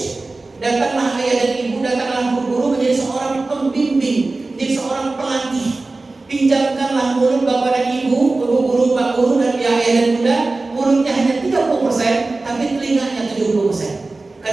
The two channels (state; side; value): quieter; left; 3.3 dB